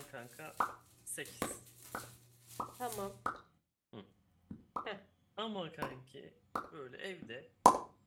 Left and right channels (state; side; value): identical; both; correlation 1.00